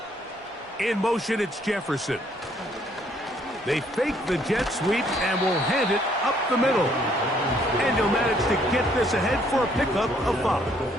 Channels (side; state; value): both; normal; correlation 0.66